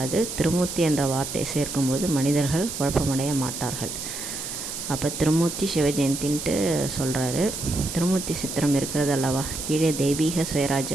திருமூர்த்தி என்ற வார்த்தை சேர்க்கும்போது மனிதர்கள் குழப்பமடைய மாட்டார்கள். அப்போ திருமூர்த்தி சிவஜெயந்தின்ட்டு சொல்கிறாரு. திருமூர்த்தி சித்திரம் இருக்கிறது அல்லவா? கீழே தெய்வீக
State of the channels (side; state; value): right; noise; hiss, 7 dB below the sound